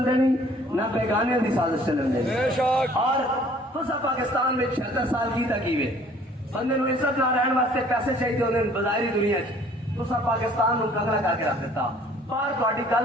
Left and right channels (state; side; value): normal; both; correlation 0.55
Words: دینی نہ بیگانے دی سازش چلن دینی، اور تسا پاکستان میں 76 سال کی تکیوے بندے نو عزت نہ رہن واسطے پیسے چاہیے ہوندے بظاہری دنیا چ، تسا پاکستان نو کنگلا کر کے رکھ دیتا، باہر تہاڈی گل